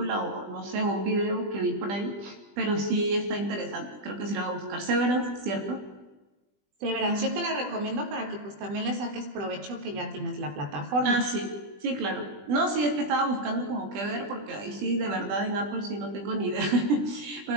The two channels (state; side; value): late; left; 20 ms